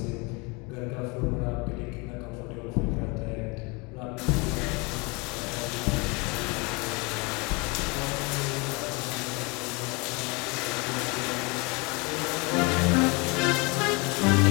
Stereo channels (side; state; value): right; quieter; 28.5 dB